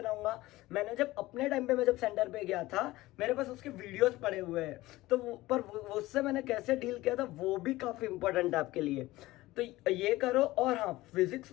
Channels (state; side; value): quieter; right; 18.2 dB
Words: मैंने जब अपने टाइम पे मैं जब सेंटर पे गया था, मेरे पास उसके वीडियोस पड़े हुए हैं, तो उससे मैंने कैसे डील किया था वो भी काफी इंपॉर्टेंट है आपके लिए। तो ये करो। और हाँ, फिजिक्स